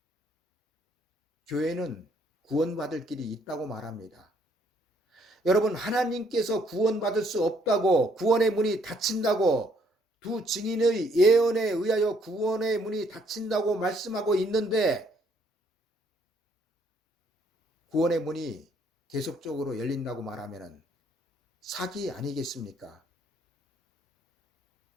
교회는 구원받을 길이 있다고 말합니다. 여러분, 하나님께서 구원받을 수 없다고, 구원의 문이 닫힌다고, 두 증인의 예언에 의하여 구원의 문이 닫힌다고 말씀하고 있는데, 구원의 문이 계속적으로 열린다고 말하면 사기 아니겠습니까?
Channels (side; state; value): both; normal; correlation 0.67